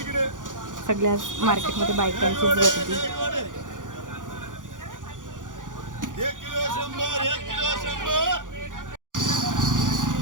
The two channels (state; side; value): late; left; 0.88 ms